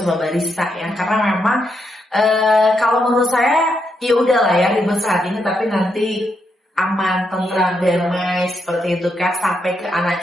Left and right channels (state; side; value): normal; both; correlation 0.81